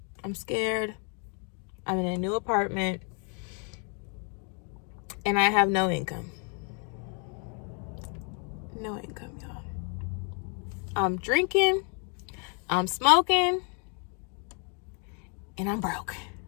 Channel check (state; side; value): quieter; right; 39.4 dB